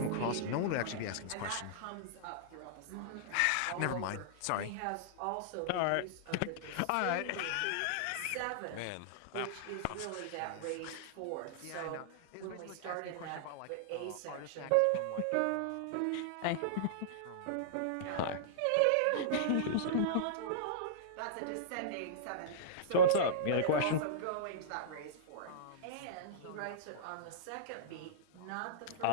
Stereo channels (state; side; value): different; both; correlation -0.02